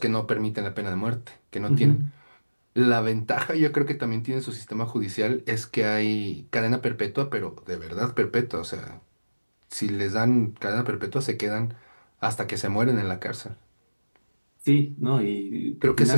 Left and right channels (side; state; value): both; inverted; correlation -1.00